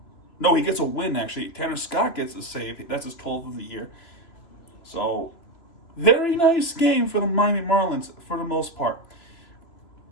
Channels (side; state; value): right; late; 3.0 ms